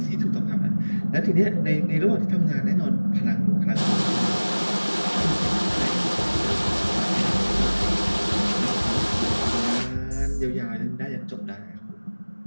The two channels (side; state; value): both; inverted; correlation -1.00